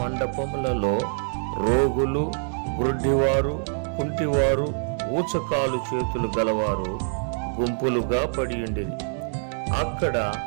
రోగులు, గ్రుడ్డివారు, కుంటివారు, ఊచకాలు చేతులు గలవారు గుంపులుగా పడియుండిరి. అక్కడ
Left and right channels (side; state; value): left; silent; 62 dB below the other